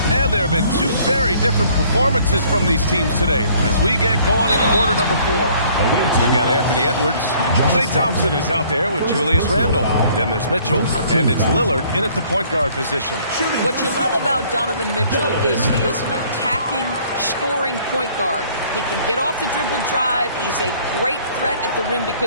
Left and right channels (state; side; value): inverted; both; correlation -0.58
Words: And there have been two very different performances from these teams today as we get going in quarter number 4. We've got Anthony Edwards. Klay Thompson is out there with Julius Randle. Then there's Mitchell, and it's Lillard in at the point guard position. What you love about Donovan Mitchell is he is an attacking, scoring point guard. He can get off the dribble drive. He's a great threat at the rim